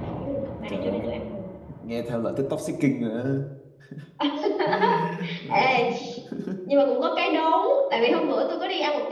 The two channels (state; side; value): identical; both; correlation 1.00